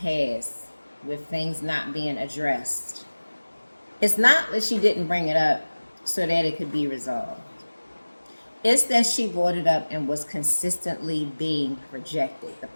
with things not being addressed, it's not that she didn't bring it up so that it could be resolved. It's that she brought it up and was consistently being rejected. The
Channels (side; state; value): both; inverted; correlation -1.00